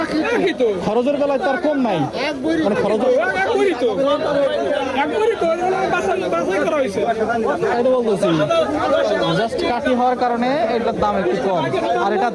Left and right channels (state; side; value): identical; both; correlation 1.00